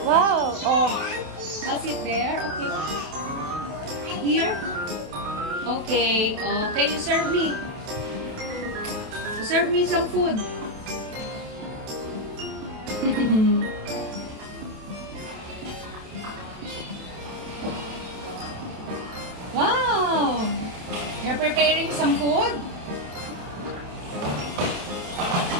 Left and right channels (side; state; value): left; late; 28 ms